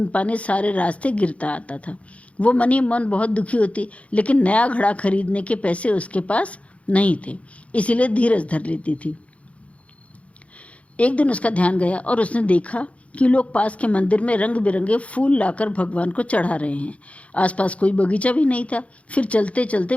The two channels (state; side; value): late; right; 0.064 ms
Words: पानी सारे रास्ते गिरता आता था। वो मन ही मन बहुत दुखी होती, लेकिन नया घड़ा खरीदने के पैसे उसके पास नहीं थे, इसीलिए धीरज धर लेती थी। एक दिन उसका ध्यान गया और उसने देखा कि लोग पास के मंदिर में रंग बिरंगे फूल लाकर भगवान को चढ़ा रहे हैं। आसपास कोई बगीचा भी नहीं था। फिर चलते चलते